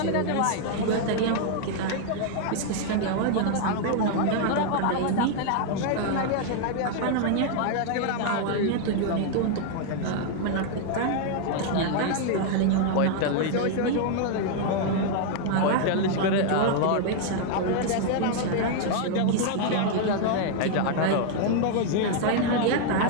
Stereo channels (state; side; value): different; both; correlation 0.00